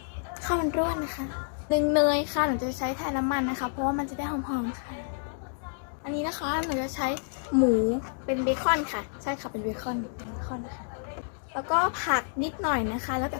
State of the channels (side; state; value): right; silent; digital silence